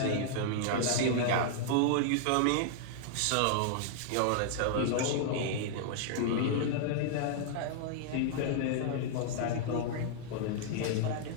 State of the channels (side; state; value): both; different; correlation -0.01